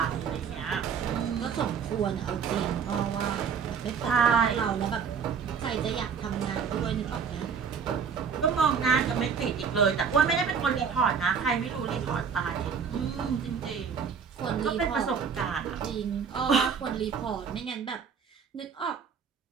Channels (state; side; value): quieter; left; 6.5 dB